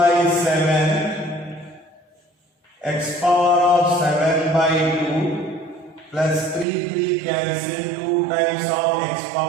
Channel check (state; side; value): drops out; left; at 6.7 s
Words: 7 x power of 7 by 2 plus 3 cancel 2 times of x